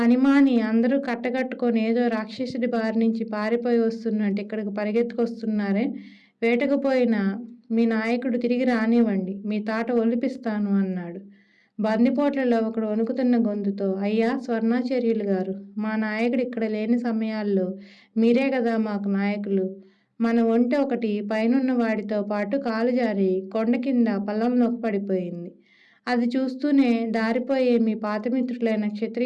అందరూ కట్టకట్టుకొని ఏదో రాక్షసుడి బారి నుంచి పారిపోయి వస్తున్నట్టు ఇక్కడికి పరిగెత్తుకొస్తున్నారే, వేటకుపోయిన మీ నాయకుడు తిరిగి రానివ్వండి, మీ తాట ఒలిపిస్తాను అన్నాడు. బందిపోట్లలో ఒకడు వణుకుతున్న గొంతుతో, అయ్యా స్వర్ణాచార్యులు గారు, మా నాయకుడు ఇక్కడ లేని సమయాల్లో మీరే కదా మాకు నాయకులు. మన ఒంటె ఒకటి పైనున్న వాడితో పాటు కాలు జారి కొండ కింద పల్లంలోకి పడిపోయింది. అది చూస్తూనే దారిపోయే మీ పాతమిత్రులైన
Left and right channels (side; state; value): both; identical; correlation 1.00